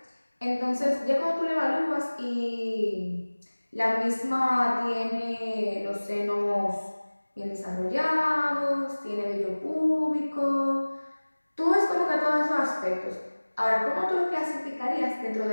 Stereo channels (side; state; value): both; inverted; correlation -1.00